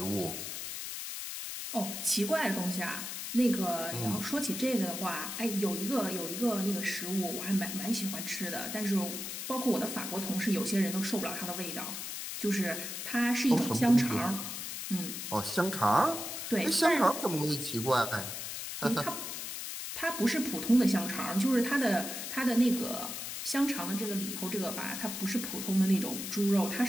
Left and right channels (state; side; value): noise; left; hiss, 6 dB below the sound